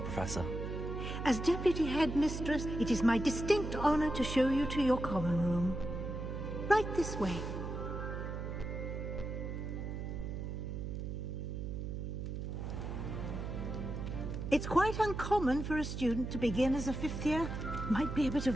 Professor. As Deputy Headmistress, it is my distinct honor to show you to your common room. Right this way. It's quite uncommon for a student to begin as a fifth year. Might be a bit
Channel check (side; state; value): right; noise; hum, 5 dB below the sound